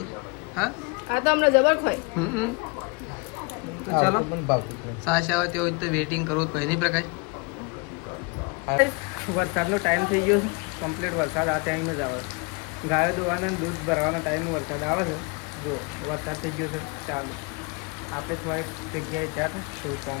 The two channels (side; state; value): right; quieter; 29.8 dB